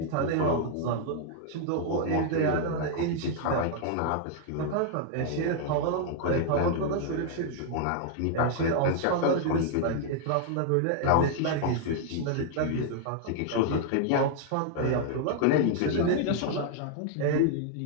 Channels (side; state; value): both; different; correlation 0.00